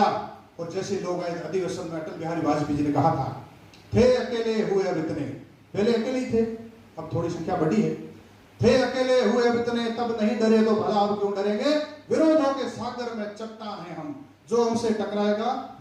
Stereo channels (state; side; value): identical; both; correlation 1.00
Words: और जैसे लोग आए अधिवेशन में, अटल बिहारी वाजपेयी जी ने कहा था, थे अकेले हुए अब इतने, पहले अकेले ही थे, अब थोड़ी संख्या बढ़ी है, थे अकेले हुए अब इतने, तब नहीं डरे तो भला अब क्यों डरेंगे, विरोधों के सागर में चट्टान हैं हम, जो हमसे टकराएगा